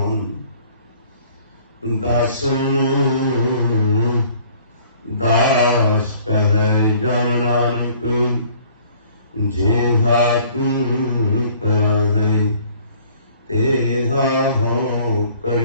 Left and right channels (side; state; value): both; inverted; correlation -0.55